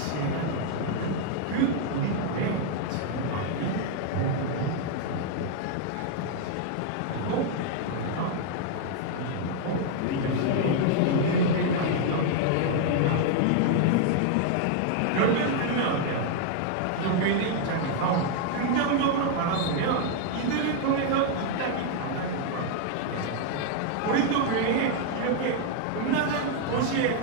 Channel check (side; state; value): both; different; correlation 0.00